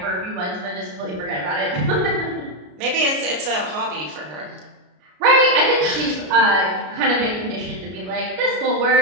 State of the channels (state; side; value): late; left; 33 ms